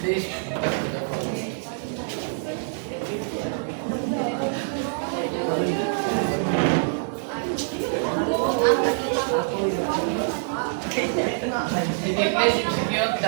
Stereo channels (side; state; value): left; silent; digital silence